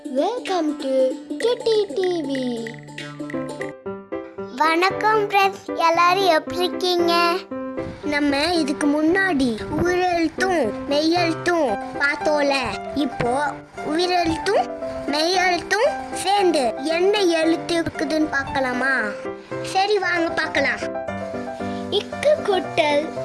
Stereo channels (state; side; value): identical; both; correlation 1.00